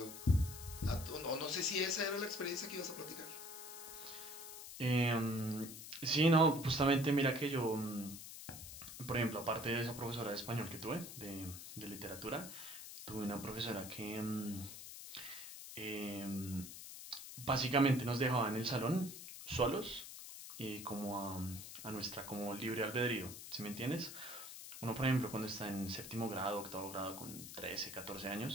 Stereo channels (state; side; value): noise; left; hiss, 11 dB below the sound